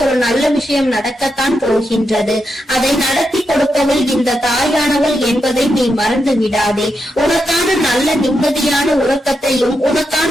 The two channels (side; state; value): both; normal; correlation 0.85